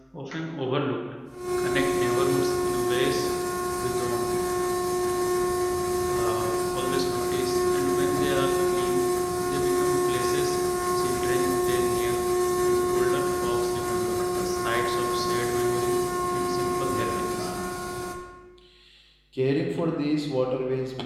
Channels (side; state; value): both; identical; correlation 1.00